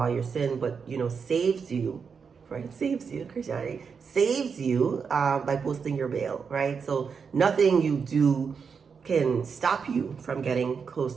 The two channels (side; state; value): left; quieter; 5.9 dB